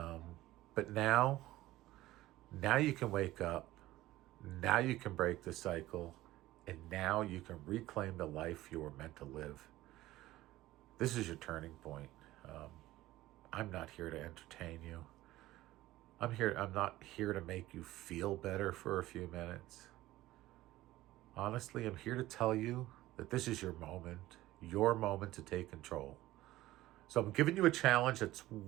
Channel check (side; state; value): left; quieter; 16.4 dB